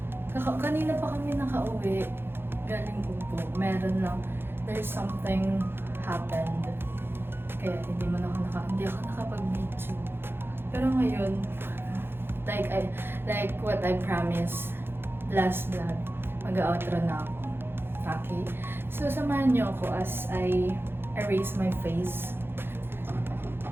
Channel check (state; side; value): late; left; 0.11 ms